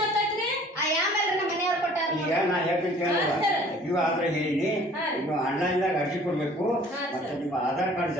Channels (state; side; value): normal; both; correlation 0.52